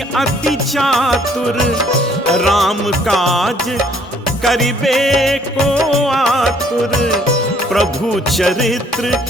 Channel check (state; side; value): normal; both; correlation 0.62